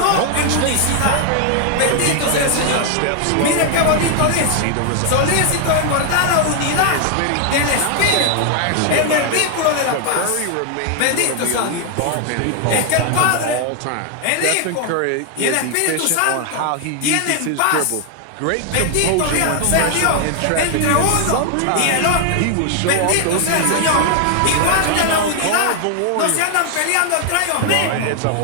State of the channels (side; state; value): both; different; correlation 0.00